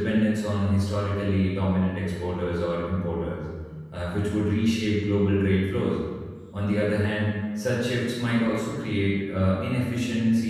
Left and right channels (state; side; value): identical; both; correlation 1.00